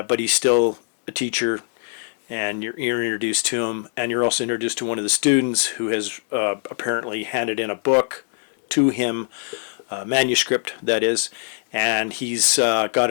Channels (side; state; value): right; silent; 64 dB below the other